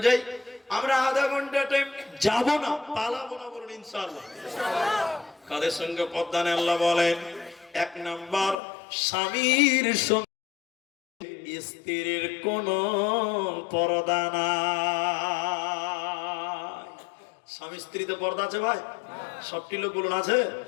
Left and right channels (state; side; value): drops out; right; at 8.6 s